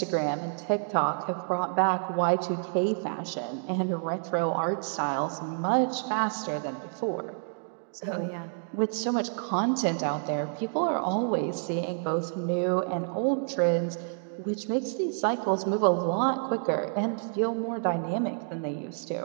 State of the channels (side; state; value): left; silent; digital silence